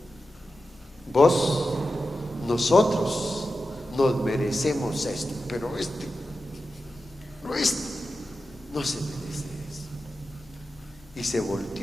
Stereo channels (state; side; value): normal; both; correlation 0.91